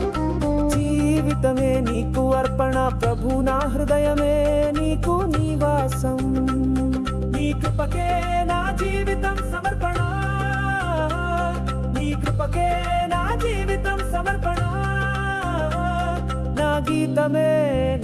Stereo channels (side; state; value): both; identical; correlation 1.00